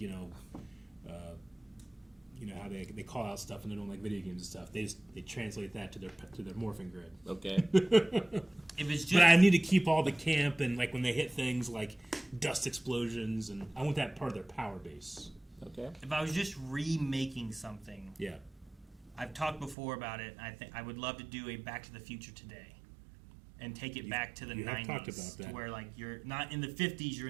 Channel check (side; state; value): left; drops out; at 19.8 s